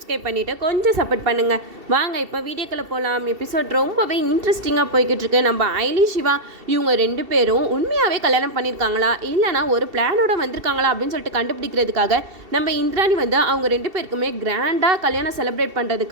பண்ணிவிட்டு கொஞ்சம் சப்போர்ட் பண்ணுங்கள். வாங்க இப்போ வீடியோக்குள்ளே போகலாம். எபிசோட் ரொம்பவே இன்ட்ரெஸ்டிங்காக போய்கிட்டு இருக்கு. நம்ம ஐலி சிவா இவங்க ரெண்டு பேரும் உண்மையாகவே கல்யாணம் பண்ணியிருக்காங்களா இல்லைனா ஒரு பிளானோட வந்திருக்காங்களா அப்படின்னு சொல்லிட்டு கண்டுபிடிக்கிறதுக்காக நம்ம இந்திராணி வந்து அவங்க ரெண்டு பேருக்குமே கிராண்டாக கல்யாணம் செலிப்ரேட்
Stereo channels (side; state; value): left; late; 2.7 ms